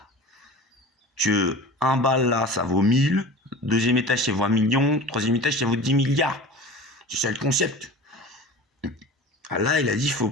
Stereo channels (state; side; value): normal; both; correlation 0.37